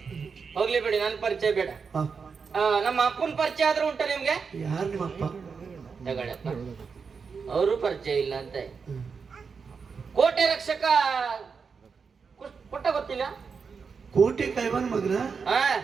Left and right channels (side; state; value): left; quieter; 5.5 dB